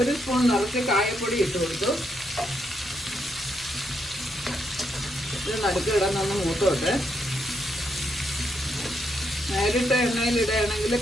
സ്പൂൺ നിറച്ച് കായപ്പൊടി ഇട്ട് കൊടുത്തു. ഇത് നടുക്ക് ഇടാനൊന്ന് മൂത്തോട്ട്. നേരിട്ട് എണ്ണയിൽ ഇടുകയാണെങ്കിൽ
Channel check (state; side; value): normal; both; correlation 0.79